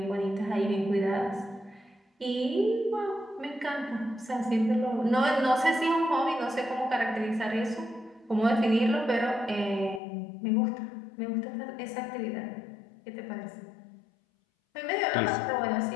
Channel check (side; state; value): right; drops out; at 10.0 s